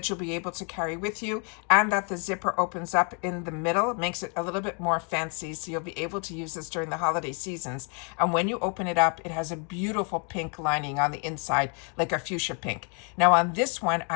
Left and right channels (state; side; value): quieter; right; 38.5 dB